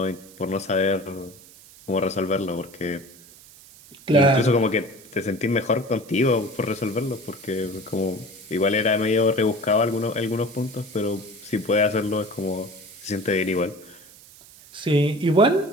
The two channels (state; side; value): noise; right; hiss, 22 dB below the sound